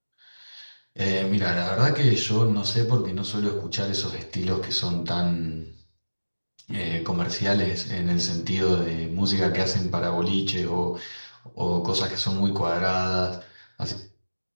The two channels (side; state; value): both; inverted; correlation -1.00